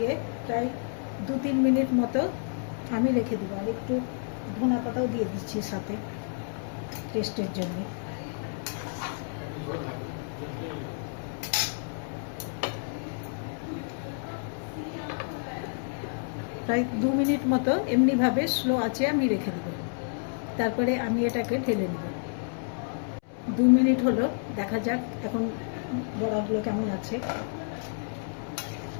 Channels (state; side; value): silent; right; 58 dB below the other